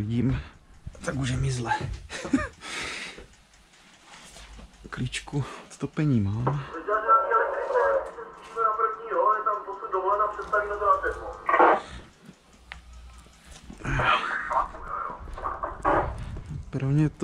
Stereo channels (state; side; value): identical; both; correlation 1.00